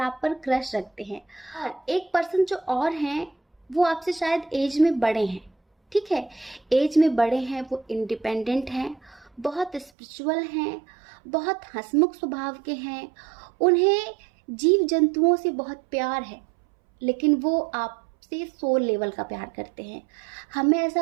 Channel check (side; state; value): left; drops out; at 9.9 s